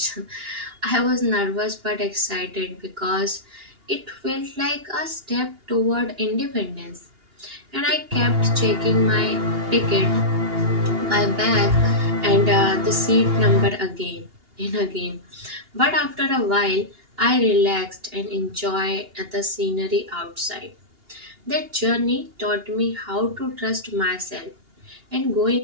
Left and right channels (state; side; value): late; left; 2.8 ms